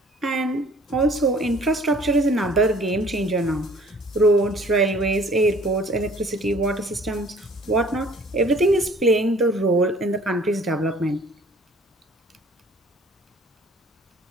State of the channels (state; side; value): normal; both; correlation 0.53